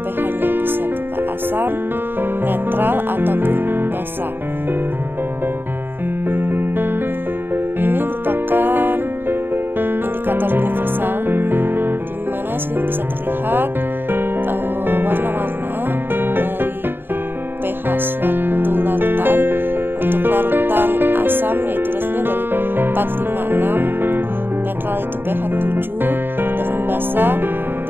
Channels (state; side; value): late; left; 0.099 ms